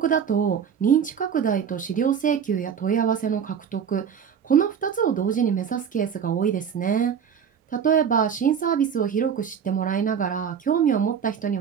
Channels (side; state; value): left; quieter; 7.6 dB